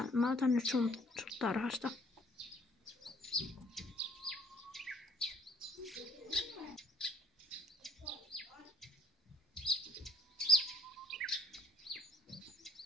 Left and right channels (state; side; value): normal; both; correlation 0.61